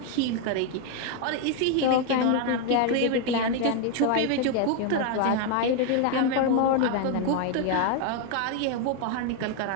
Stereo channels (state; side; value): different; both; correlation 0.01